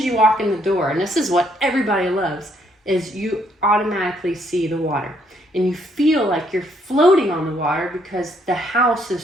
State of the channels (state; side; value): normal; both; correlation 0.70